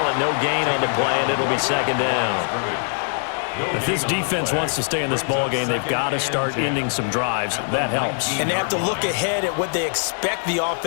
it no gain on the play, and it'll be 2nd down. If this defense wants to stay in this ball game, they've got to start ending some drives. That helps. And they have to look ahead at what they expect the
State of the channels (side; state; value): right; silent; 64 dB below the other